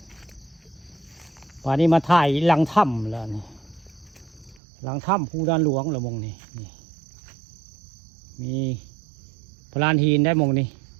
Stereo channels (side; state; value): left; drops out; at 4.6 s